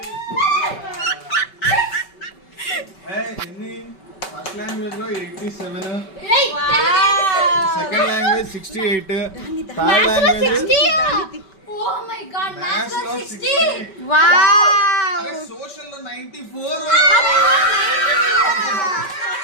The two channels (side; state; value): right; late; 5.2 ms